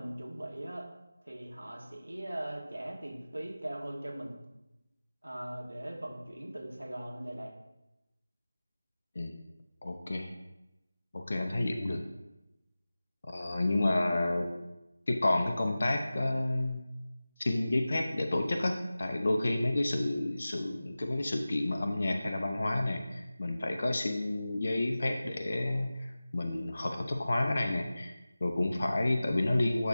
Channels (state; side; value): inverted; both; correlation -0.97